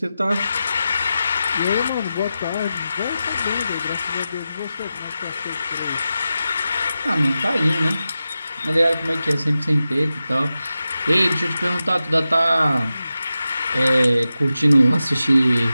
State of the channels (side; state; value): both; inverted; correlation -0.92